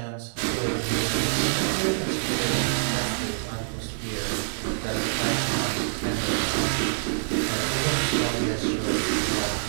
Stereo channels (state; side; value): silent; left; digital silence